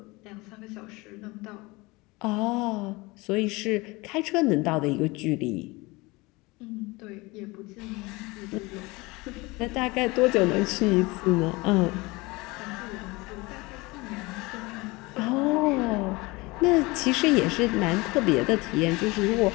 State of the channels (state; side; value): quieter; right; 23.6 dB